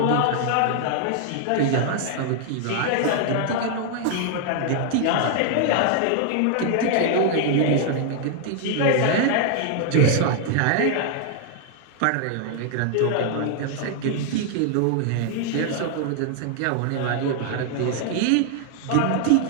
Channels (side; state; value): both; different; correlation 0.00